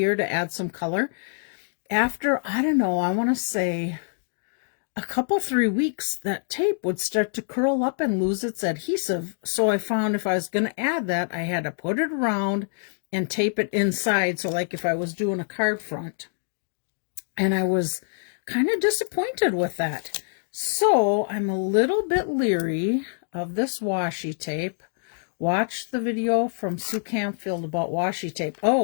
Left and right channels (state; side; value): silent; right; digital silence